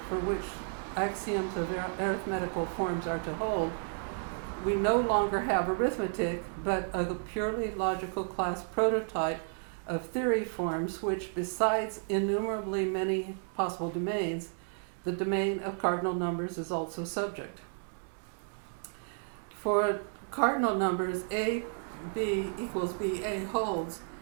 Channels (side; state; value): left; silent; digital silence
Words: for which axioms of arithmetical forms are to hold, we no longer have arithmetic, but a purely logical class prototype of theory forms which, besides innumerably many possible domains, the domain of cardinal numbers is also subject. For cardinal numbers, a b equals ba holds.